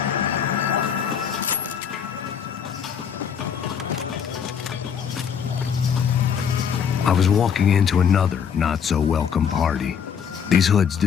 I was walking into another not-so-welcome party. These hoods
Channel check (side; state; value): right; quieter; 7.5 dB